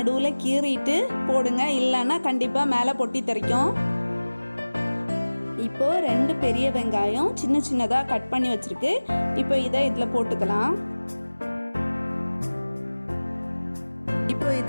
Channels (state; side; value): inverted; both; correlation -1.00